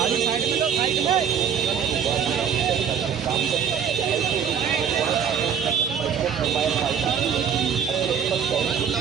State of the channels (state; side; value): quieter; left; 7.7 dB